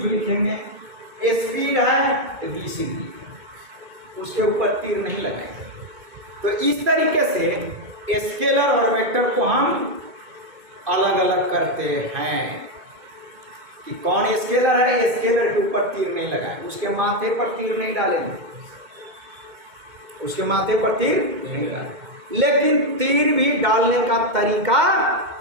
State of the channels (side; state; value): left; late; 2.2 ms